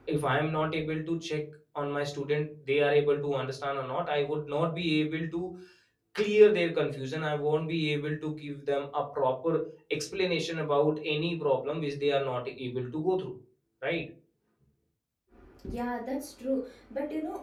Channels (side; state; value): both; identical; correlation 1.00